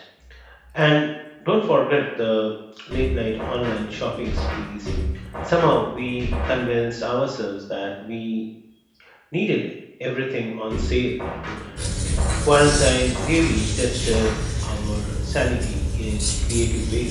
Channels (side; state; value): both; identical; correlation 1.00